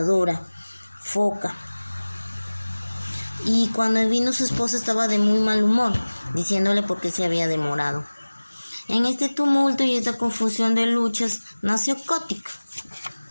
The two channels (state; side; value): inverted; both; correlation -1.00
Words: foca. Y cuando vino su esposa estaba de muy mal humor, diciéndole por qué se había demorado. En este tumulto y esta confusión de luchas nació Kotick,